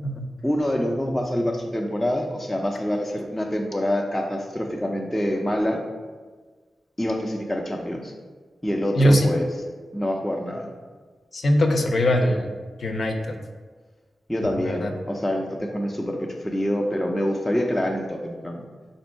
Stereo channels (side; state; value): both; normal; correlation 0.93